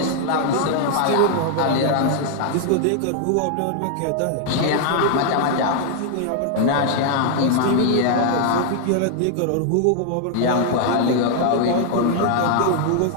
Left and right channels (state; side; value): different; both; correlation 0.00